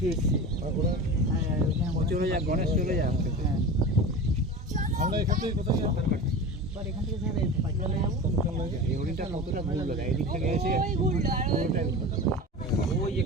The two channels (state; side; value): normal; both; correlation 0.31